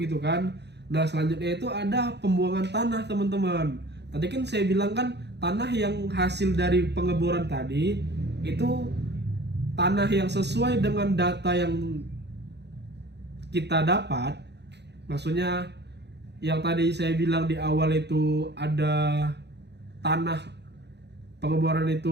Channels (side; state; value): left; late; 0.50 ms